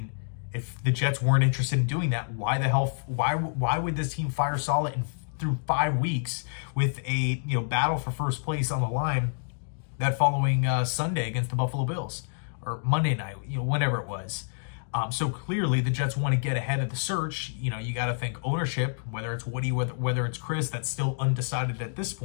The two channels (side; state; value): right; silent; digital silence